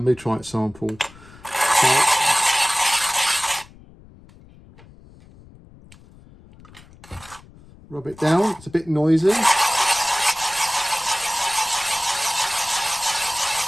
meteorite sample. So, rub it down, it's a bit noisy.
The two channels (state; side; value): noise; left; rumble, 23 dB below the sound